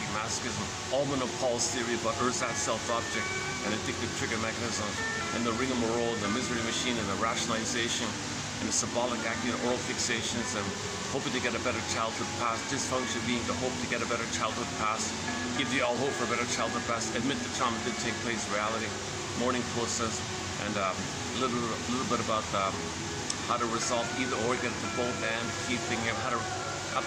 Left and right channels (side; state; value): both; identical; correlation 1.00